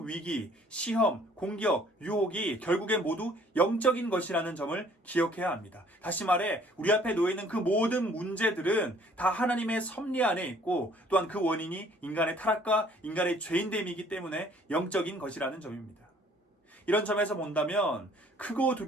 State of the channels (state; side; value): normal; both; correlation 0.58